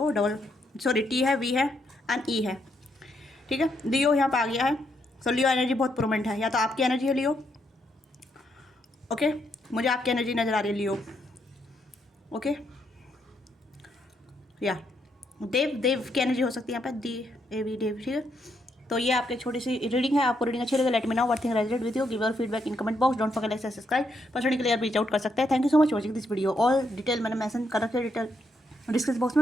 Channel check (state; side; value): normal; both; correlation 0.77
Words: डबल सॉरी T है, V है एंड E है, ठीक है। लियो यहाँ पे आ गया है, सो लियो एनर्जी बहुत प्रोमेंट है, या तो आपकी एनर्जी है लियो, ओके। मुझे आपकी एनर्जी नज़र आ रही है लियो, ओके। या देव की एनर्जी हो सकती है यहाँ पे, देव, ठीक है। तो ये आपकी छोटी सी रीडिंग है, आपको रीडिंग अच्छी लगे let me know what thing resonate with you, give your feedback in comment box, don't forget like subscribe, personally clear reach out कर सकते हैं। Thank you so much watching this video, all detail मैंने mention कर रखे detail description box